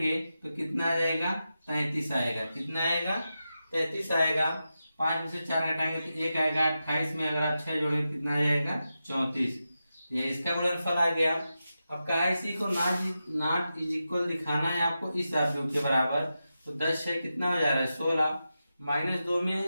तो कितना आ जाएगा, 33 आएगा। कितना आएगा, 33 आएगा। 5 में से 4 घटाएंगे तो 1 आएगा। 28 में अगर आप 6 जोड़ेंगे कितना आ जाएगा, 34। ये इसका गुणनफल आ गया। अब कहा इसी को नॉट इज इक्वल दिखाना है आपको इस आव्यूह के बराबर। तो 10 6 कितना हो जा रहा है, 16। -2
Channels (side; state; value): both; inverted; correlation -0.90